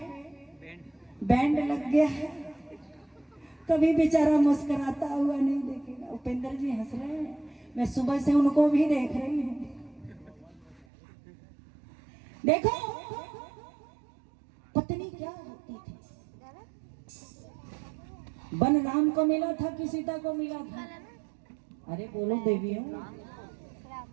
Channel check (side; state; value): left; drops out; at 10.9 s